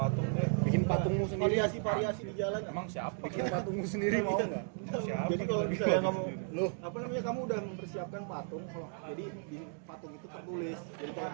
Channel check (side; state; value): left; silent; 55 dB below the other